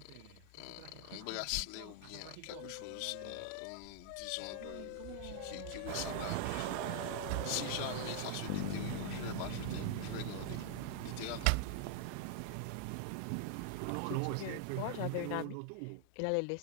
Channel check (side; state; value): both; different; correlation 0.00